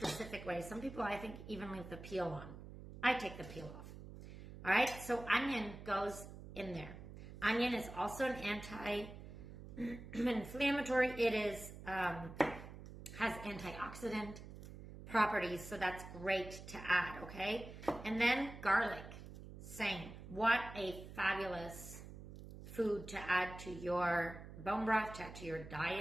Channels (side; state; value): right; noise; hum, 13 dB below the sound